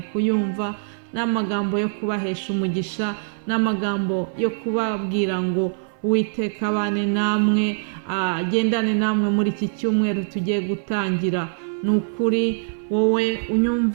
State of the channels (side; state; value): left; silent; 58 dB below the other